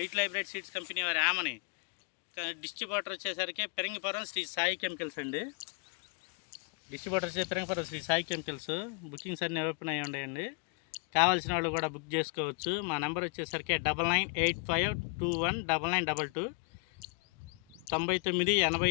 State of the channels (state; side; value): quieter; right; 36.0 dB